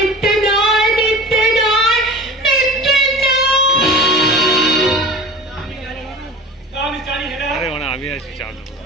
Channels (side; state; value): both; normal; correlation 0.36